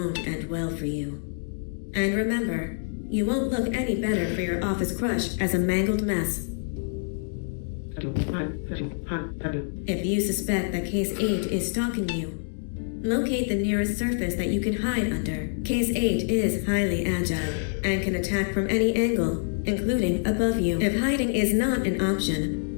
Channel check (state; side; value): silent; right; digital silence